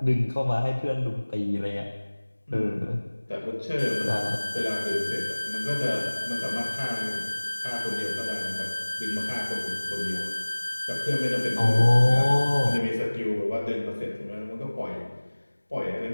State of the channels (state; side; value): inverted; both; correlation -1.00